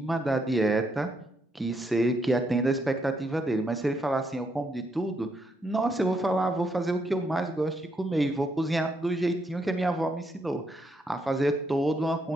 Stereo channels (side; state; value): both; normal; correlation 0.77